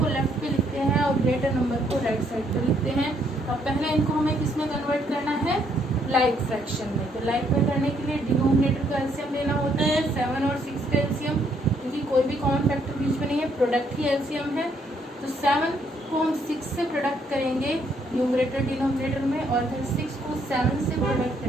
लेफ्ट पे लिखते हैं और ग्रेटर नंबर को राइट साइड पे लिखते हैं। और पहले इनको हमें किस में कन्वर्ट करना है, लाइक फ्रैक्शन में। तो लाइक में करने के लिए डिनोमिनेटर का एलसीएम लेना होता है, 7 और 6 का एलसीएम, क्योंकि कोई भी कॉमन फैक्टर बीच में नहीं है, प्रोडक्ट ही एलसीएम है। तो 7 को हम 6 से प्रोडक्ट करेंगे न्यूमरेटर डिनोमिनेटर में, और फिर 6 को 7 से प्रोडक्ट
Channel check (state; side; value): normal; both; correlation 0.70